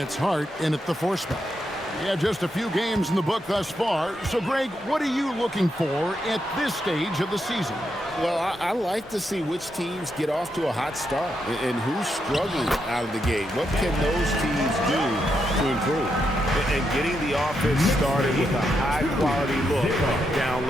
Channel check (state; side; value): normal; both; correlation 0.82